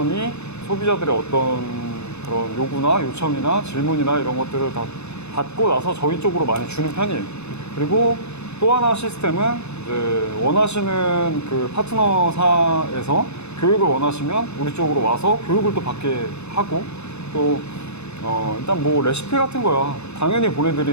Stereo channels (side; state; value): right; late; 0.81 ms